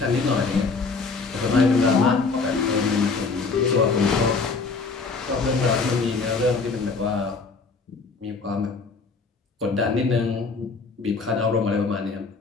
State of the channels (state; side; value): quieter; right; 4.4 dB